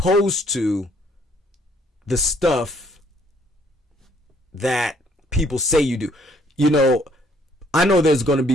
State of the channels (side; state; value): both; normal; correlation 0.65